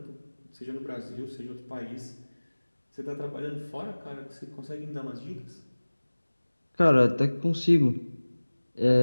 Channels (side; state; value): both; inverted; correlation -1.00